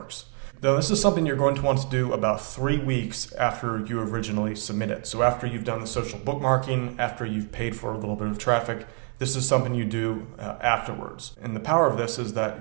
Now this is something you're going to want to do about 3 weeks after you originally submit it. So after you've done the social bookmarking, after you've paid for a little bit of traffic, this is something you do afterwards. And the power of this is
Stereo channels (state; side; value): quieter; left; 38.0 dB